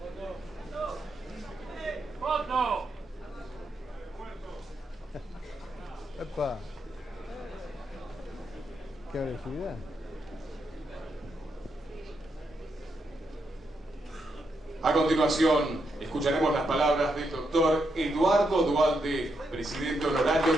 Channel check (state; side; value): normal; both; correlation 0.81